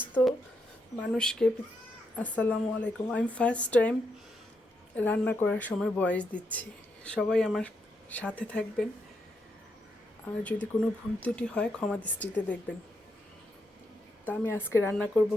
মানুষকে আসসালামু আলাইকুম। আমি ফার্স্ট টাইম রান্না করার সময় ভয়েস দিচ্ছি, সবাই আমার সাথে থাকবেন। আর যদি কোনো ভুল ত্রুটি হয় ক্ষমা দৃষ্টিতে দেখবেন। তা আমি আজকে রান্না করব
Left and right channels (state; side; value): normal; both; correlation 0.81